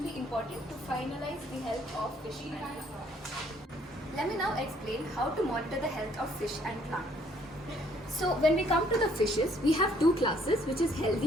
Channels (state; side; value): normal; both; correlation 0.64